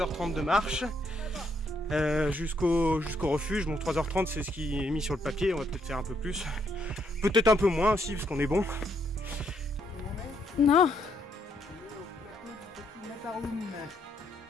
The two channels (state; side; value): normal; both; correlation 0.74